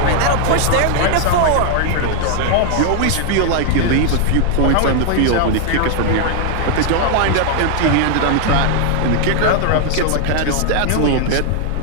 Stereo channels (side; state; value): both; different; correlation 0.00